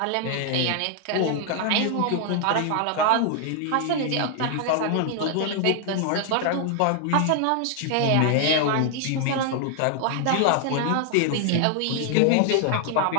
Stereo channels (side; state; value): both; different; correlation 0.00